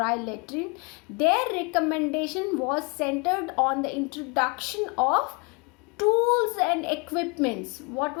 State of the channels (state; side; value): quieter; right; 31.2 dB